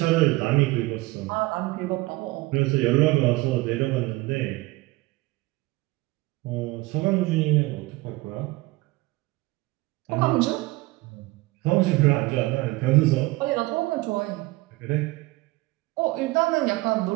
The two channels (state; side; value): quieter; left; 21.0 dB